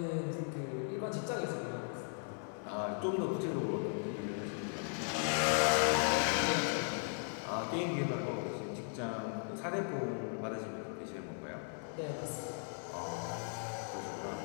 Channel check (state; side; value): silent; right; 53 dB below the other